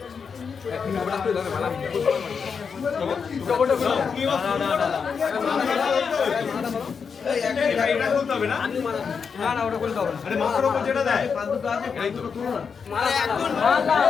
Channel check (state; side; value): quieter; right; 6.0 dB